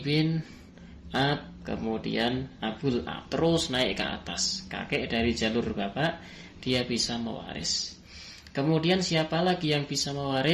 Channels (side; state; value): both; identical; correlation 1.00